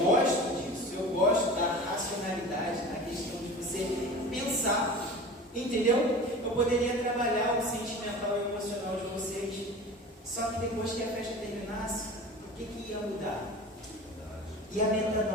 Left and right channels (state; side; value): normal; both; correlation 0.36